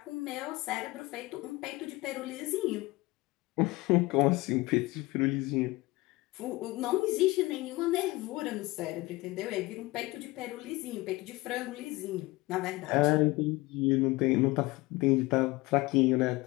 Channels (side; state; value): right; quieter; 21.2 dB